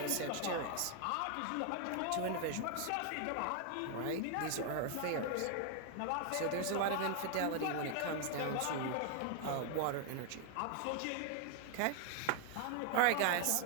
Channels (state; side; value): different; both; correlation 0.00